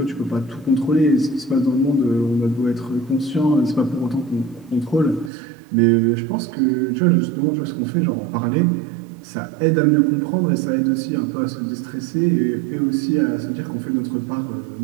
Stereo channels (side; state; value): left; drops out; at 5.3 s